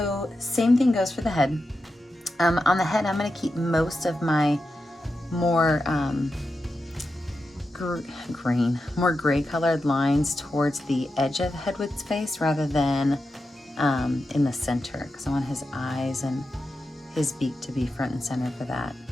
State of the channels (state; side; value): normal; both; correlation 0.89